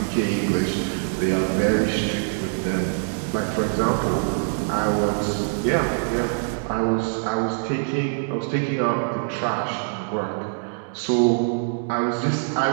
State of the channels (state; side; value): silent; left; digital silence